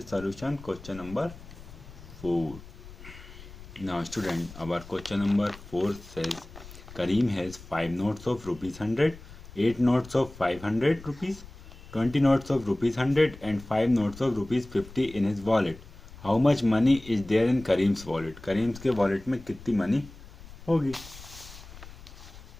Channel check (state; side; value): noise; left; rumble, 17 dB below the sound